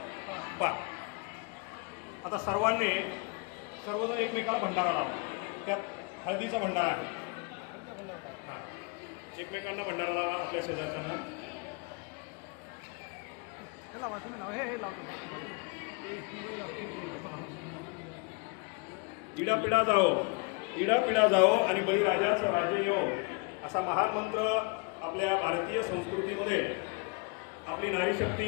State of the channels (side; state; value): right; quieter; 32.6 dB